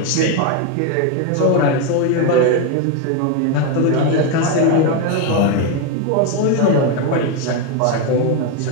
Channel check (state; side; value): different; both; correlation 0.01